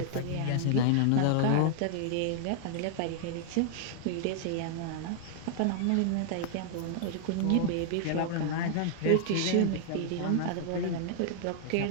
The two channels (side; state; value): both; different; correlation -0.01